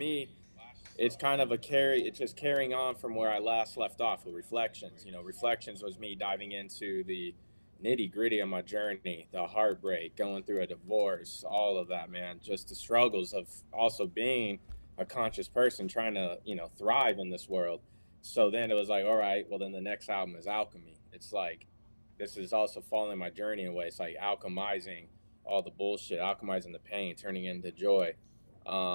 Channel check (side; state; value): both; inverted; correlation -1.00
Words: it's kind of it's just carrying on from where I last left off with Reflections. You know, Reflections was me diving into the nitty gritty of my journey, the heartbreak, going through a divorce, all of that, man. Just the struggles of also being a conscious person trying to, you know, thrive in this world. So then it was like, all right, well, then the next album is Alchemy. It's like, this is also following my journey in a way. It's like alchemizing all the bullshit, alchemizing the pain, turning it into joy.